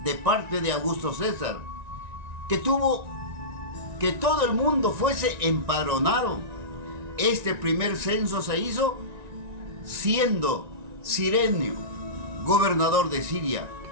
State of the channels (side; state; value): left; late; 1.9 ms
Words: de parte de Augusto César, que tuvo que todo el mundo fuese empadronado. Este primer censo se hizo siendo Cirenio gobernador de Siria,